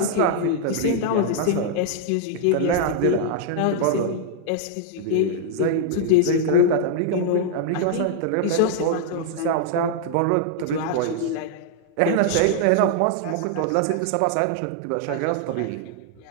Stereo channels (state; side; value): different; both; correlation -0.01